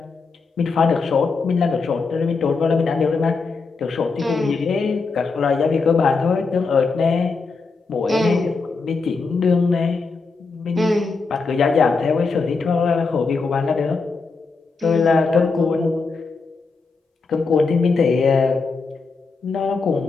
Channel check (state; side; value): quieter; right; 4.4 dB